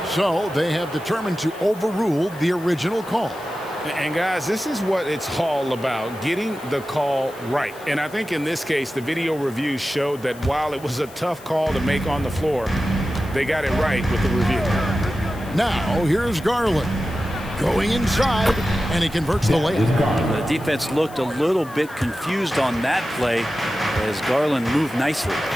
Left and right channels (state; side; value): noise; left; hiss, 21 dB below the sound